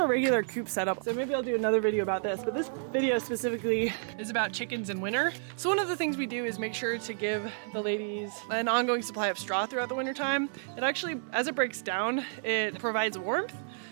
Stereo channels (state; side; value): silent; left; digital silence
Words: regular coop setup. So maybe I'll do another video about this, but this video specifically is about chickens in winter. So one of the things we do is make sure to give the ladies an ongoing supply of straw throughout the winter time. It actually, as it breaks down, it provides warmth.